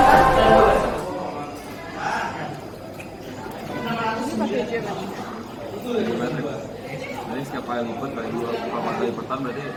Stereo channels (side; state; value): both; identical; correlation 1.00